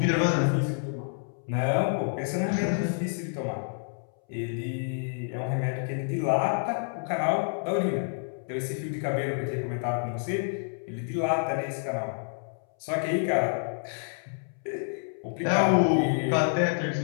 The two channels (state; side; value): silent; right; 59 dB below the other